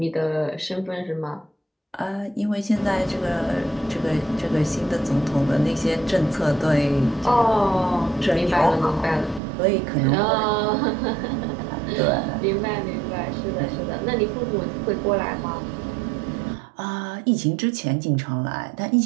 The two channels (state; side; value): drops out; left; at 9.4 s